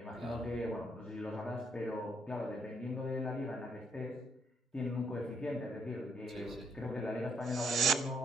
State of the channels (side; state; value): both; normal; correlation 0.72